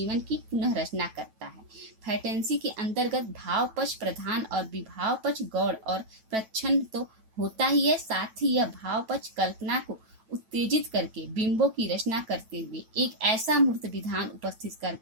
की पुनः रचना करता है। फैंटेसी के अंतर्गत भाव पक्ष प्रधान और विभाव पक्ष गौण और प्रच्छन्न तो होता ही है, साथ ही यह भाव पक्ष कल्पना को उत्तेजित करके बिंबों की रचना करते हुए एक ऐसा मूर्त विधान उपस्थित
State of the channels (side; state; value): left; late; 9.1 ms